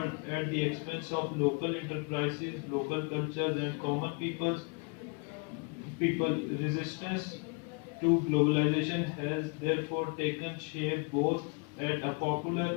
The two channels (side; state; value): right; quieter; 34.4 dB